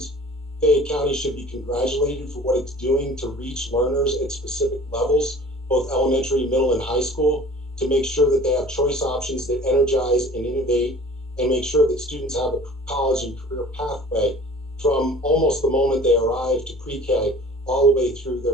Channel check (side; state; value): both; normal; correlation 0.46